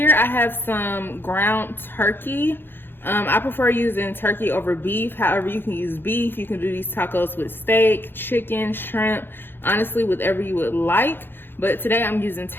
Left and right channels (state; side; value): late; right; 0.10 ms